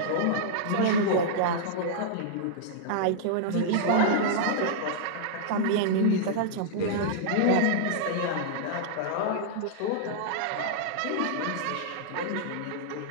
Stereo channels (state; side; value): different; both; correlation -0.02